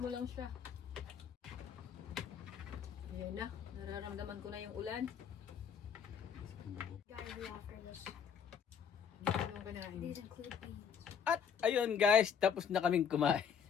lang siya. Ayan na. Nararamdaman ko na yung ulan. Guys, we after this. These include beans. At ayun guys, tapos na kaming kumain.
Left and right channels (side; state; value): right; quieter; 7.4 dB